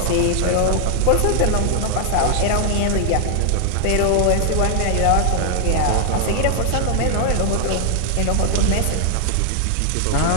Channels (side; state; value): both; different; correlation 0.00